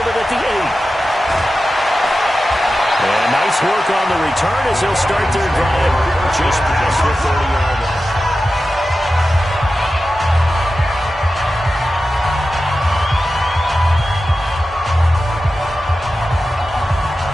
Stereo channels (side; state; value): both; normal; correlation 0.93